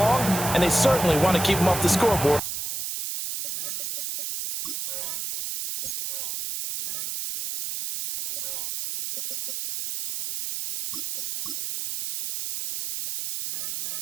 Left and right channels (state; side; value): noise; right; hiss, 5 dB below the sound